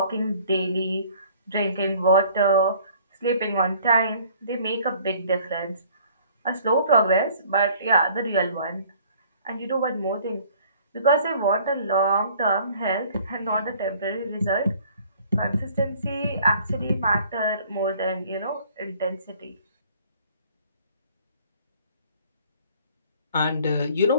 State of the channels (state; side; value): inverted; both; correlation -0.55